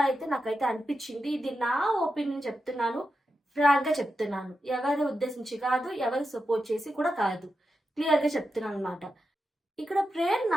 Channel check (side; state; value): both; normal; correlation 0.89